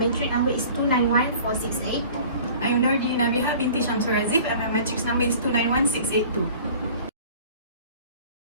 number is 291468. I'm Nordi Nabiha binti Shamsul Razif and my matrix number is 291682.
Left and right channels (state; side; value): inverted; both; correlation -0.46